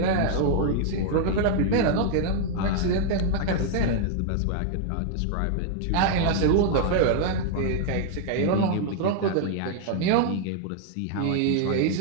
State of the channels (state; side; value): different; both; correlation 0.00